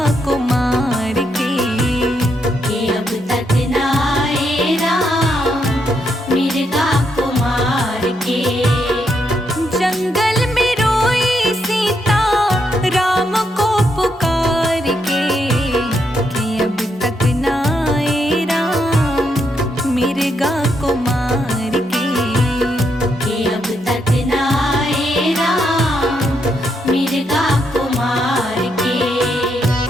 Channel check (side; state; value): both; normal; correlation 0.78